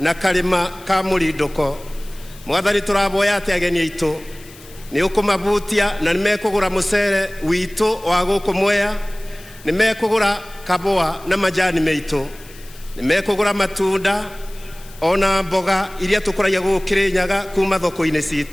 karima ka murindoko. Mwathani turaboya ati ageni aitu ni ukumabutia na nimekugura mucere witu wa guku Mwea, nimekugura kaboa na majani meitu, nimekugura matunda ona mboga iria tukuragia guku Kirinyaga kuma thoko-ini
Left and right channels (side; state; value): left; noise; hiss, 21 dB below the sound